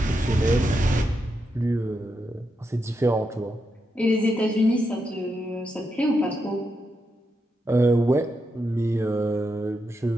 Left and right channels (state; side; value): normal; both; correlation 0.84